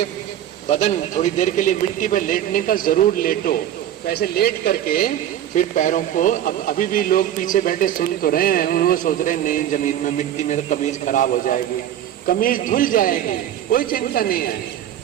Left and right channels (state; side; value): quieter; left; 11.2 dB